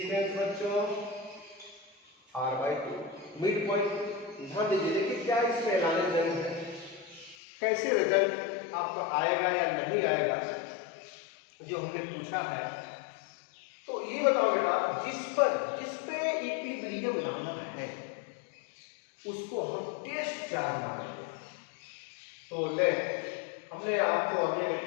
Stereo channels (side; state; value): right; drops out; at 7.4 s